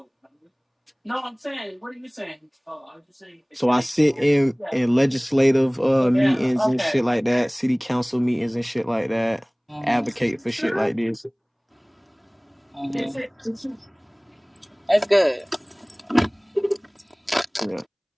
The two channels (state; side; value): identical; both; correlation 1.00